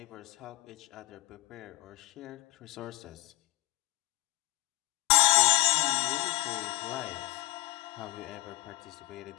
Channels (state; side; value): quieter; right; 19.2 dB